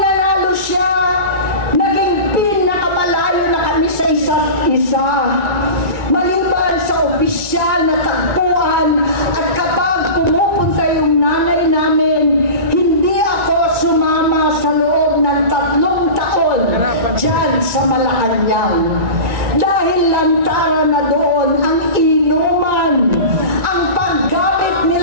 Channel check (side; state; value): left; late; 2.3 ms